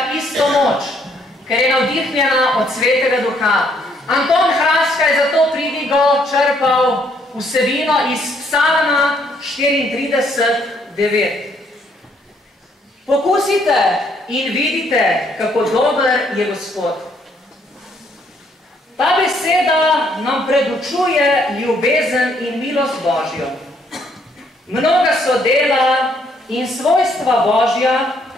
isto moč, ker je navdihnjena od Svetega Duha. Anton Hraska je zato pridigo črpal vsebino iz Psalma 34:9. Pokusite in vidite, kako dober je Gospod. Ta beseda nam predučuje ljubezen in milost Božjo. Mnoga so dela in svojstva Božja,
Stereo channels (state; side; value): normal; both; correlation 0.68